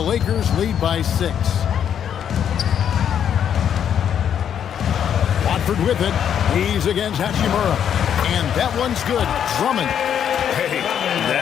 lead by 6. Watford with it. He's against Hachimura. And that one's good. Drummond. Hey,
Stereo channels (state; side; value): quieter; right; 8.9 dB